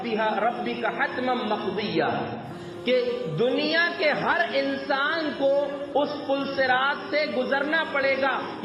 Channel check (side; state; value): both; identical; correlation 1.00